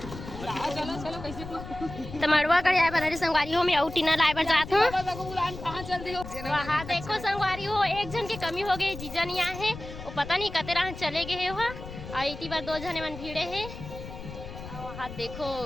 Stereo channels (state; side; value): noise; left; rumble, 12 dB below the sound